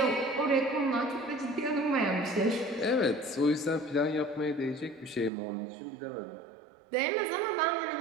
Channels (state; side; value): drops out; left; at 5.3 s